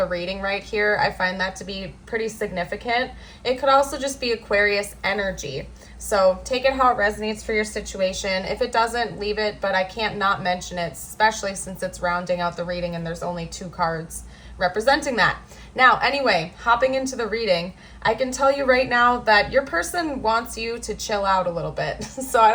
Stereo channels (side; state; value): both; identical; correlation 1.00